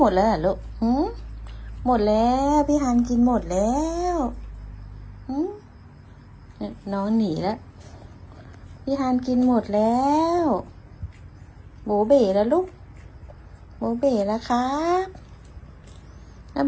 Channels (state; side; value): identical; both; correlation 1.00